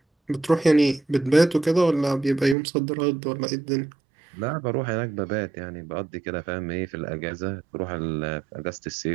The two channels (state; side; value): drops out; left; at 2.6 s